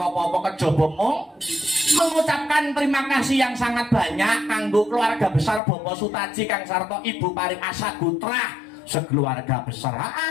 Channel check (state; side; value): drops out; right; at 5.6 s